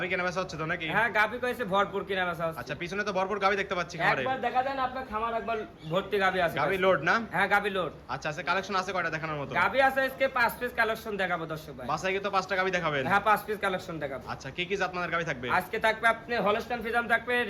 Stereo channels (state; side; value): identical; both; correlation 1.00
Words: কেনা বেচা হচ্ছে তো নাকি? হ্যাঁ, গাবি কইছে ভরপুর কিনা বেচা হচ্ছে। আচ্ছা, পিছনে তো ভরপুর গাবি দেখতে পাচ্ছি খামারে। একবার দেখা দেন আপনার খামার একবার ভর্তি গাবি আছে। গাবি লোড না? হ্যাঁ, গাবি লোড। আচ্ছা, আছে কালেকশন আছে কয়টা দেখানোর মতো? গাবি আছে আজকে 5 পিস কালেকশন দেখাবো দর্শক ভাই। বাসায় কি তো 5টা গাবি দেখাবেন? হ্যাঁ, 5 পিস কালেকশন দেখাবো। আচ্ছা, কি কি জাত মানের গাবি থাকবে? আজকে থাকবে আপনি হলস্টাইন ফ্রিজাম থাকবে,